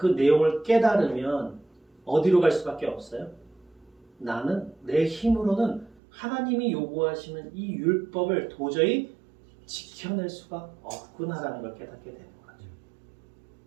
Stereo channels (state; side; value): drops out; left; at 6.0 s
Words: 내용을 깨달으면 어디로 갈 수밖에 없어요? 나는 내 힘으로는 하나님이 요구하시는 이 율법을 도저히 지켜낼 수가 없구나라는 걸 깨닫게 되는 거죠.